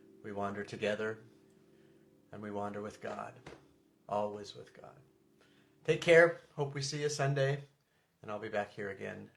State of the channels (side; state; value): both; identical; correlation 1.00